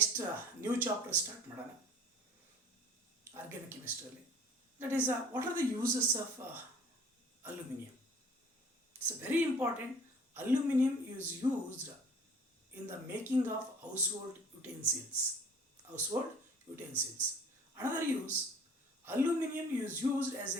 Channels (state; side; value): normal; both; correlation 0.50